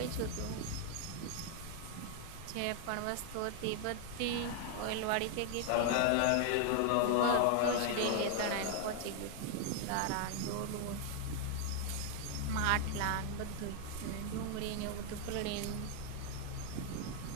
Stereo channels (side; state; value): both; different; correlation 0.00